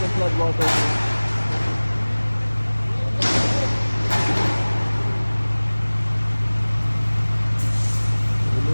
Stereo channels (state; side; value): inverted; both; correlation -1.00